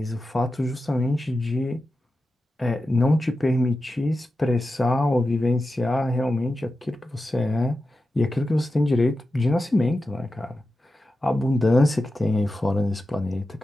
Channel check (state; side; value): normal; both; correlation 0.92